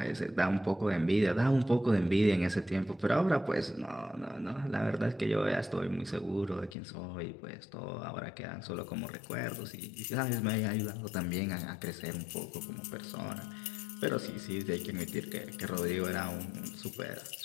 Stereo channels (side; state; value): right; drops out; at 6.8 s